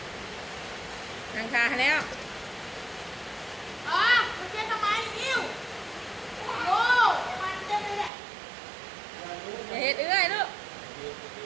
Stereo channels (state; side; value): drops out; left; at 8.1 s